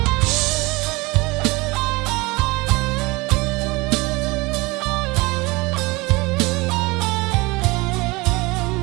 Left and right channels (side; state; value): left; quieter; 23.9 dB